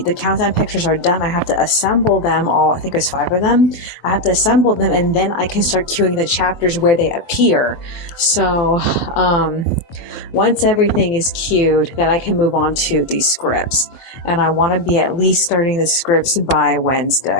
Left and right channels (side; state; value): right; late; 23 ms